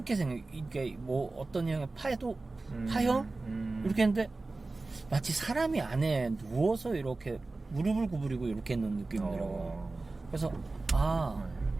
생겨. 이게 뭐 어떤 형의 파형 이렇게 했는데 마치 사람이 안에 누워서 이렇게 무릎을 구부리고 이렇게 있는 느낌이더라고. 그래서 아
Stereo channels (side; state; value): left; quieter; 3.4 dB